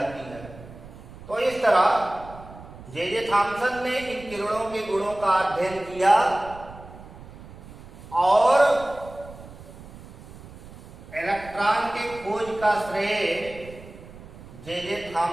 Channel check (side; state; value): right; noise; rumble, 17 dB below the sound